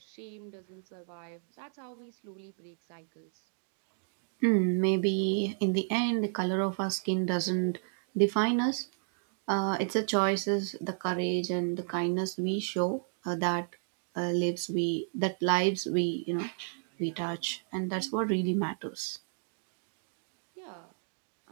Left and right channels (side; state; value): left; silent; digital silence